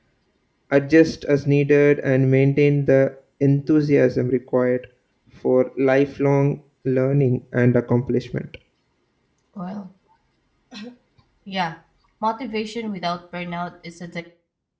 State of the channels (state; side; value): identical; both; correlation 1.00